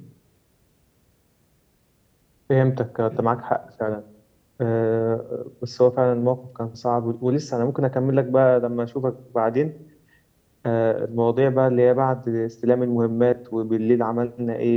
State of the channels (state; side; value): identical; both; correlation 1.00